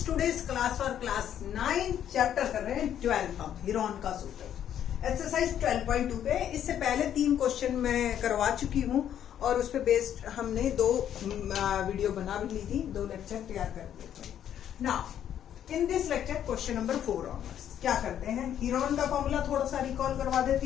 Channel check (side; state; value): right; quieter; 10.1 dB